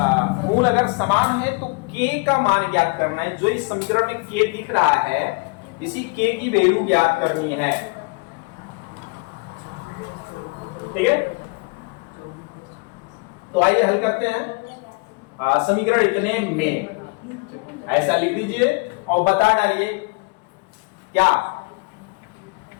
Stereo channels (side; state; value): right; quieter; 30.2 dB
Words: मूल अगर समान है तो k का मान ज्ञात करना है। जो इस समीकरण में k दिख रहा है, इसी k की वैल्यू ज्ञात करनी है। ठीक है, तो आइए हल करते हैं। समीकरण इतने में ऐसा लिख दीजिए और बता डालिए क्या,